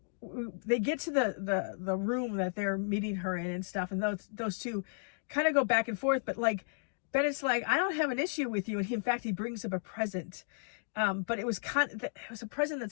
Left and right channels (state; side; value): silent; right; digital silence